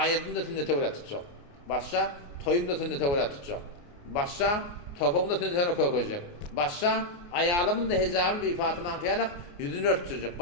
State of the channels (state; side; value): late; right; 29 ms